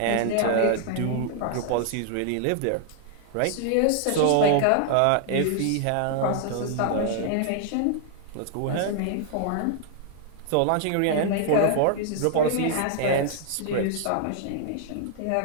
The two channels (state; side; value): different; both; correlation 0.00